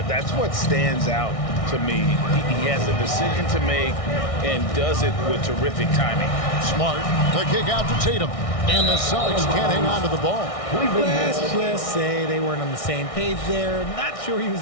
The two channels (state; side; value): late; right; 1.6 ms